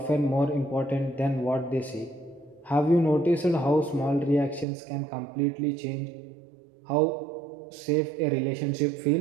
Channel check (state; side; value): drops out; left; at 4.7 s